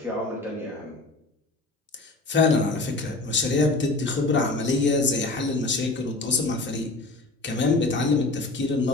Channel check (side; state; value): right; quieter; 3.1 dB